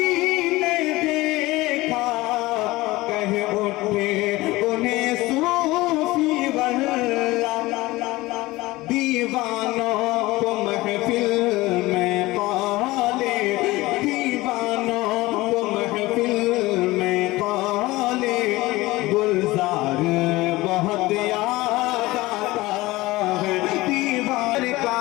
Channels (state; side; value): quieter; right; 19.7 dB